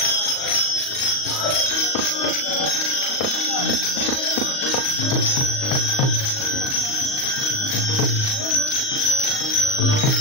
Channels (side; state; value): right; late; 38 ms